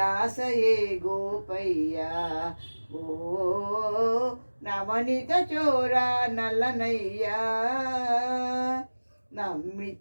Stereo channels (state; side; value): inverted; both; correlation -1.00